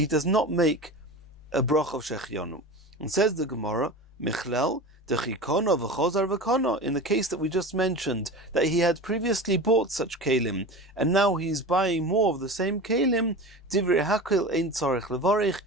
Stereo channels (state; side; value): normal; both; correlation 0.31